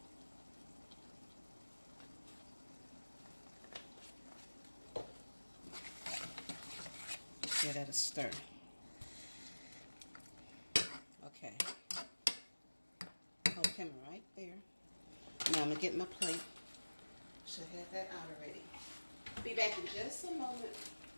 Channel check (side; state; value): both; inverted; correlation -1.00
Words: Give that a stir. Okay. Hold the camera right there. Now I'm going to get my plate. Should have that out already. Be back in just a moment.